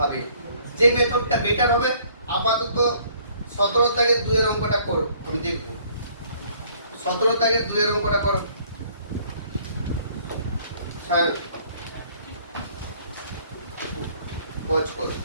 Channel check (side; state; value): both; inverted; correlation -0.59